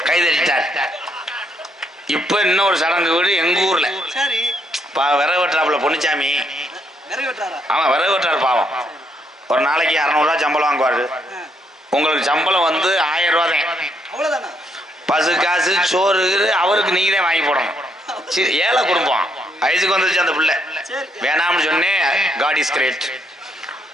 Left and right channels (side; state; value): both; normal; correlation 0.74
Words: கைதட்டிட்டார். இப்ப இன்னொரு சடங்கு வீடு எங்க ஊர்ல. விறகு வெட்டுறாப்புல பொன்னுச்சாமி. ஆமா, விறகு வெட்டுறாரு பாவம். ஒரு நாளைக்கு 600 ரூபா சம்பளம் வாங்குவாரு. உங்களுக்கு சம்பளம் வந்து 1000 ரூபா தான். பசு காசு சோறு அவருக்கு நீங்க தான் வாங்கி போடணும். ஏழை குடும்பம், வயசுக்கு வந்துருச்சு அந்த பிள்ளை. வேணாம்னு சொன்னேன், காட் இஸ் கிரேட்,